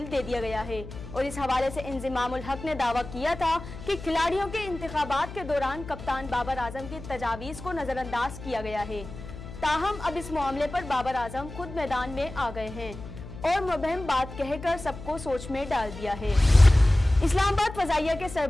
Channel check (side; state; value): left; noise; hum, 13 dB below the sound